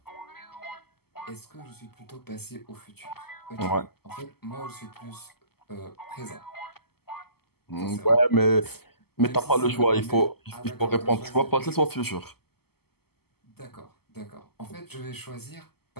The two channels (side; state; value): right; late; 0.96 ms